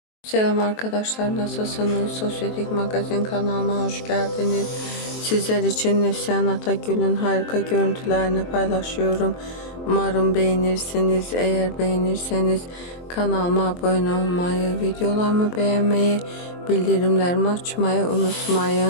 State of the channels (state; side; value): late; right; 23 ms